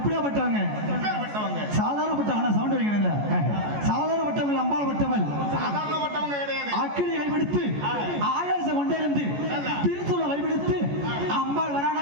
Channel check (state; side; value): late; left; 14 ms